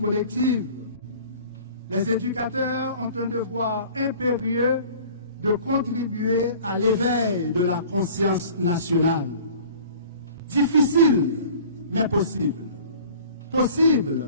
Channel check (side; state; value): both; inverted; correlation -0.46